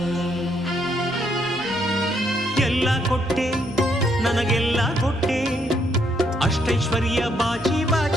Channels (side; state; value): both; normal; correlation 0.73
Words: ಎಲ್ಲ ಕೊಟ್ಟೆ ನನಗೆಲ್ಲ ಕೊಟ್ಟೆ ಅಷ್ಟೈಶ್ವರ್ಯ ಬಾಚಿ